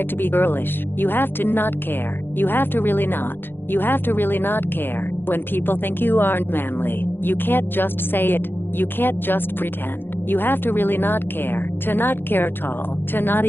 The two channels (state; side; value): late; right; 0.10 ms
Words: to be girlish. You have to not care. You have to really not. You have to really not care when people think you aren't manly. You can't just say it. You can't just pretend. You have to really not care. To not care at all. To not